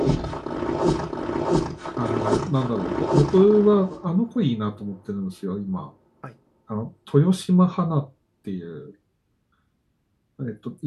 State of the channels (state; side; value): identical; both; correlation 1.00